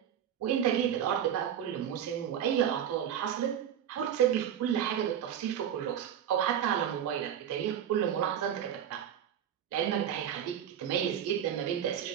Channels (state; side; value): quieter; left; 9.5 dB